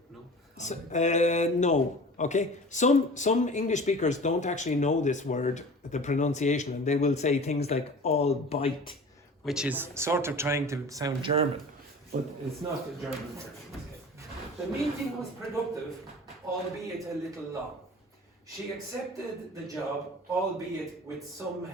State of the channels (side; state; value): both; normal; correlation 0.40